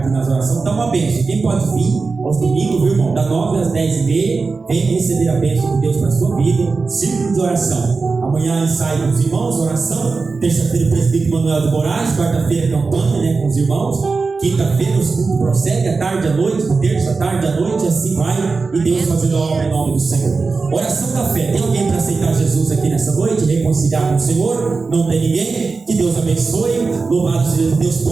nas orações. Então, uma bênção. Quem pode vir aos domingos, viu, irmão? Da 9 às 10h30, vem receber a bênção de Deus para a sua vida. Círculo de oração. Amanhã ensaio com os irmãos, oração. Terça-feira, o presbítero Manuel de Moraes. Quarta-feira, campanha, né, com os irmãos. Quinta-feira, o culto prossegue, à tarde, à noite, terça, à tarde, à noite, assim vai, e Deus fazendo a obra em nome do Senhor. Oração da fé. Tem alguém para aceitar Jesus aqui nessa noite? Reconciliar com o Senhor? Não tem ninguém? Que Deus abençoe. Louvado seja Deus,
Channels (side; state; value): left; quieter; 4.3 dB